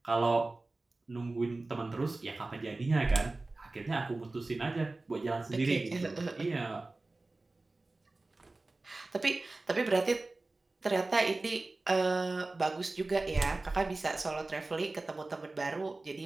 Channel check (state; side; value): quieter; left; 3.2 dB